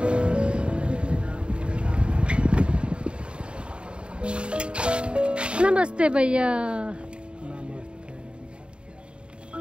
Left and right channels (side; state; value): left; late; 0.054 ms